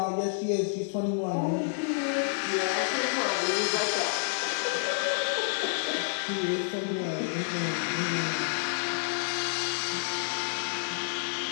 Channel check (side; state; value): right; silent; 57 dB below the other